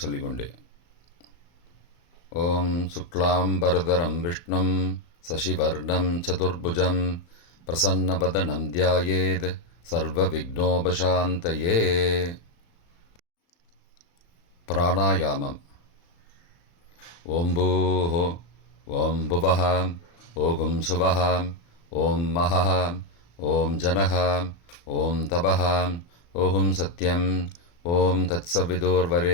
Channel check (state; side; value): late; right; 35 ms